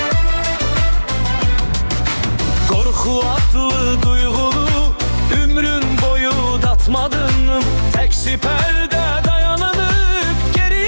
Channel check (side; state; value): both; inverted; correlation -1.00